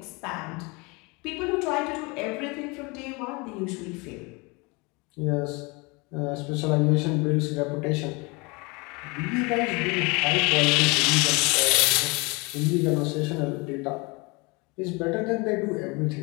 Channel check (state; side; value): quieter; right; 27.6 dB